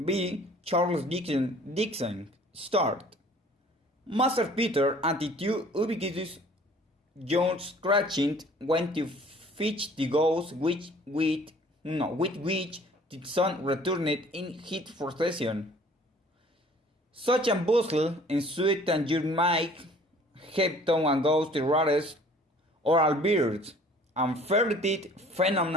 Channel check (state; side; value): normal; both; correlation 0.52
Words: Charles Dixon. Start. Master Peter and the two ubiquitous John Scratching went to fetch the ghost with which the sun returned in his procession. Such a bustle ensued that you might have thought a ghost the rarest oral birds and ferreted